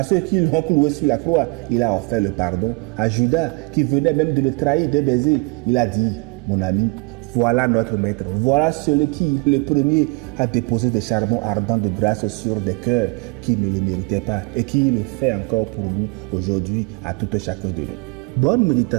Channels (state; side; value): quieter; left; 29.1 dB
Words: ceux qui l'ont cloué sur la croix, il a offert le pardon. À Judas, qui venait même de le trahir d'un baiser, il a dit, mon ami, voilà notre maître, voilà celui qui, le premier, a déposé des charbons ardents de grâce sur des cœurs qui ne le méritaient pas et qui le fait encore pour nous aujourd'hui, à tout un chacun de nous. Bonne